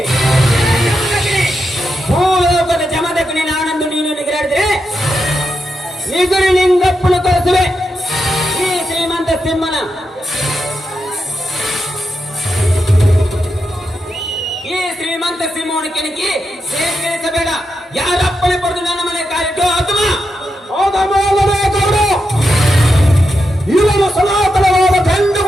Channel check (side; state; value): both; normal; correlation 0.86